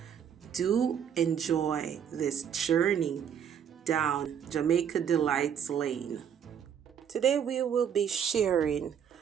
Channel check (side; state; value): left; quieter; 8.3 dB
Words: Do enjoy this journey down Jamaica Delights Lane. Today we will be sharing